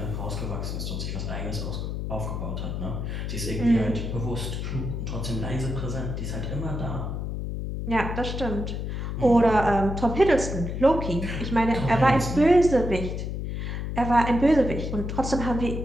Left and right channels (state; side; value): noise; left; hum, 4 dB below the sound